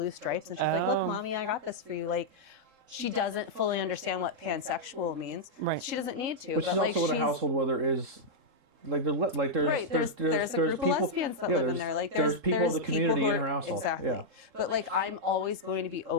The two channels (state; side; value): late; left; 3.7 ms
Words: stripes, and she's like, "Look, Mommy, I got this for you." She doesn't fully understand what pansexual means. Right. She doesn't need to. But she's also in a household where there is. There's a group people, of lesbians that live in there. There's people of the community in her household. Exactly. Yeah. But I'm always going to be